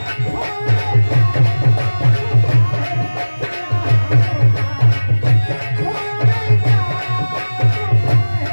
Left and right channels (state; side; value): inverted; both; correlation -1.00